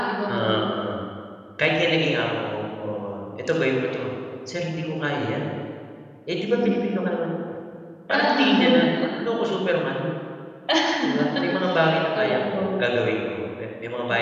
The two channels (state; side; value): identical; both; correlation 1.00